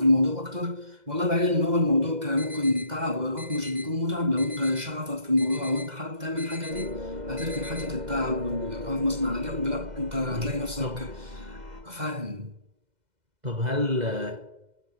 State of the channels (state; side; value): late; left; 2.0 ms